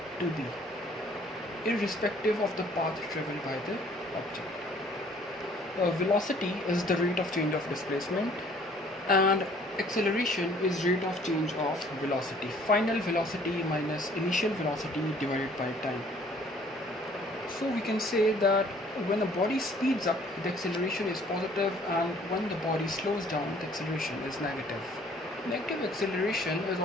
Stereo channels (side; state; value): both; normal; correlation 0.57